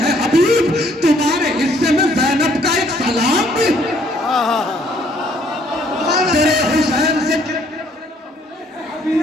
हबीब, तुम्हारे हिस्से में ज़ैनब का एक सलाम भी। तेरे हुसैन से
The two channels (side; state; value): both; normal; correlation 0.64